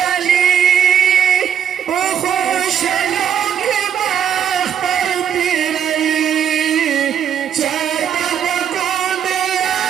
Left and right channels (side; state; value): left; quieter; 8.7 dB